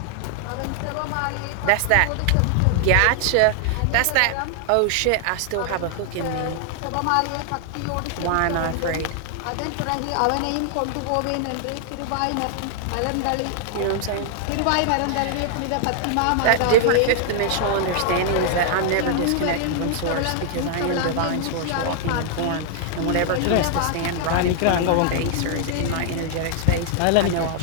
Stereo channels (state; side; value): different; both; correlation 0.00